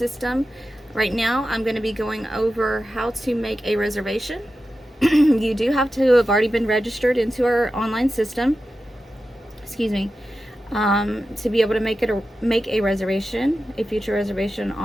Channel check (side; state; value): both; normal; correlation 0.92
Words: Right now, I'm going to be going over how to make a reservation. You do have to have already been registered into our online system. Excuse me. To be able to make a reservation, a future reservation